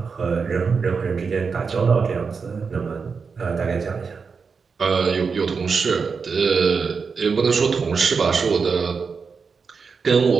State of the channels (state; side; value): quieter; left; 5.3 dB